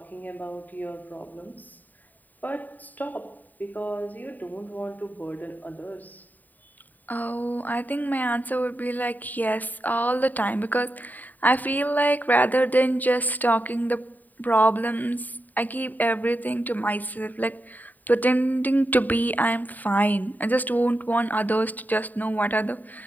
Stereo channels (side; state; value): right; late; 0.085 ms